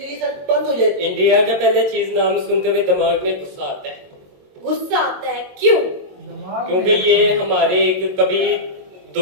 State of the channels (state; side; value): late; left; 22 ms